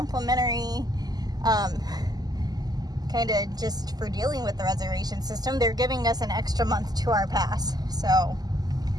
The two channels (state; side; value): late; left; 0.19 ms